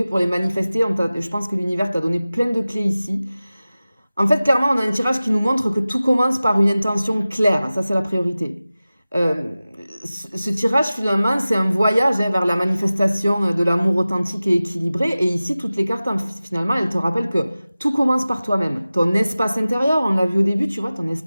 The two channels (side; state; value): both; inverted; correlation -0.96